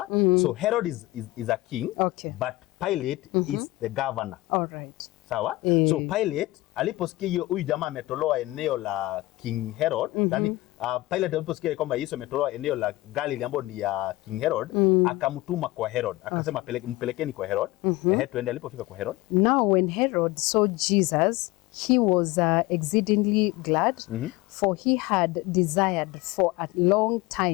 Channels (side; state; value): right; quieter; 19.4 dB